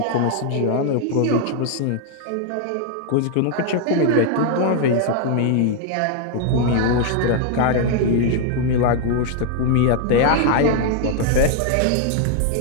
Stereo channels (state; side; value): different; both; correlation 0.00